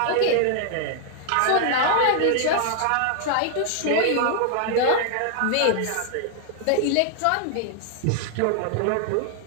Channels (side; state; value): both; different; correlation 0.00